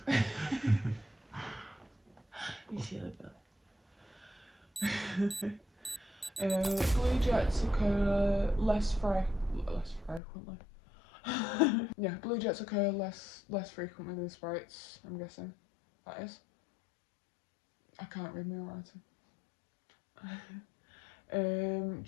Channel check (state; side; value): drops out; right; at 10.2 s